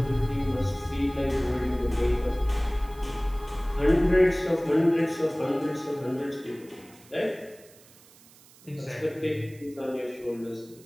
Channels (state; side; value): noise; right; hiss, 25 dB below the sound